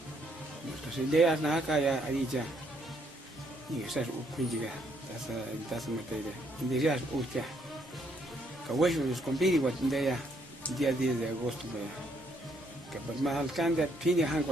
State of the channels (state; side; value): normal; both; correlation 0.71